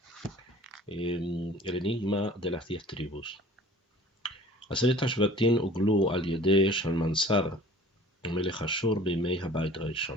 El enigma de las 10 tribus. Aseret HaShvatim uglu al yedei Shalmansar Melech Ashur bimei Habayit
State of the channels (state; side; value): normal; both; correlation 0.46